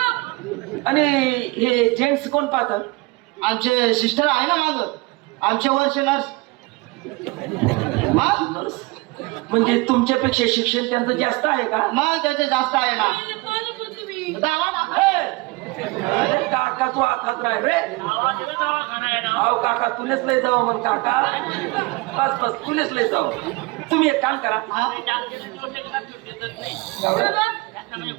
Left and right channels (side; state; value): left; quieter; 24.1 dB